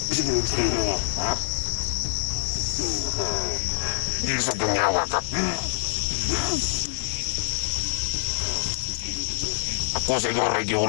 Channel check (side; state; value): right; silent; digital silence